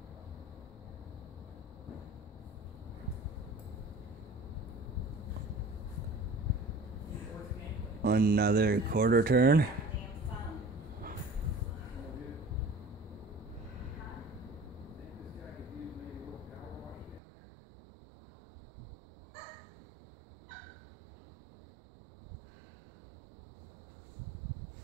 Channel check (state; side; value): drops out; left; at 17.2 s